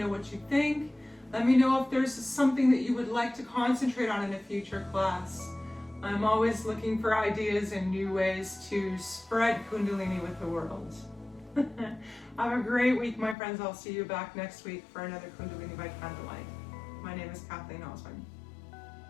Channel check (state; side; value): drops out; right; at 13.4 s